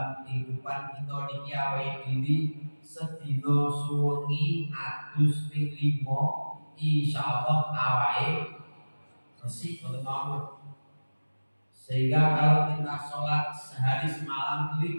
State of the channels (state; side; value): inverted; both; correlation -1.00